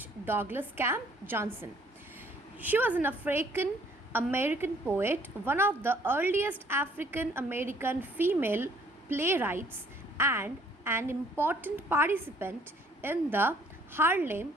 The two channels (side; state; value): both; normal; correlation 0.61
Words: Douglas Camp Johnson. She was an African American poet, one of the earliest African American female playwrights, and an important participant in the Harlem